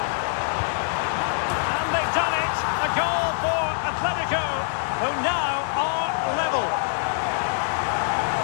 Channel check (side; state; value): right; silent; digital silence